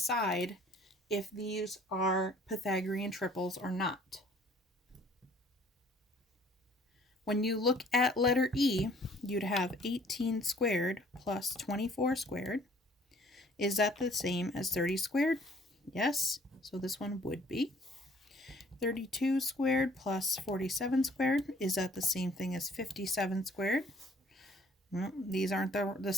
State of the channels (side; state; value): both; normal; correlation 0.57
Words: if these are Pythagorean triples or not. When you look at letter E, you'd have 18 squared plus 24 squared. Is that the same as 30 squared? Yes, so this one would be. 32 squared plus 47 squared. Is that the same thing as 57 squared? No, these aren't the